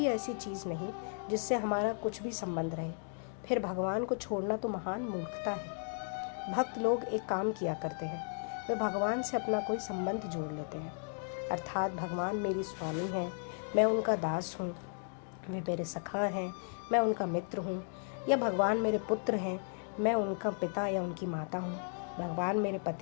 ऐसी चीज़ नहीं जिससे हमारा कुछ भी संबंध रहे। फिर भगवान को छोड़ना तो महान मूर्खता है। भक्त लोग एक काम किया करते हैं, वे भगवान से अपना कोई संबंध जोड़ लेते हैं। अर्थात भगवान मेरी स्वामी हैं, मैं उनका दास हूँ, वे मेरे सखा हैं, मैं उनका मित्र हूँ। या भगवान मेरे पुत्र हैं, मैं उनका पिता या उनकी माता हूँ। भगवान मेरे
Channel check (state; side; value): silent; right; 54 dB below the other